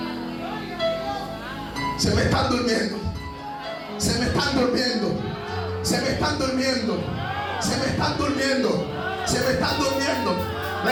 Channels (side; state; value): both; identical; correlation 1.00